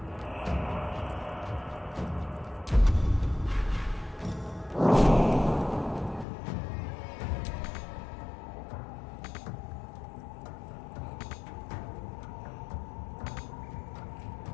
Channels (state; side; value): drops out; right; at 6.2 s